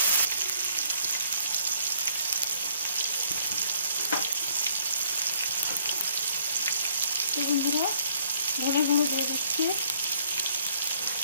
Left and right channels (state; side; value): inverted; both; correlation -0.63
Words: বন্ধুরা ধনে গুঁড়ো দিয়ে দিচ্ছি,